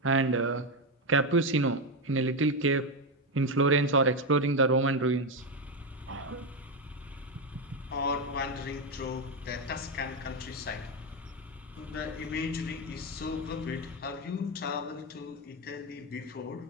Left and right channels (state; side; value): normal; both; correlation 0.09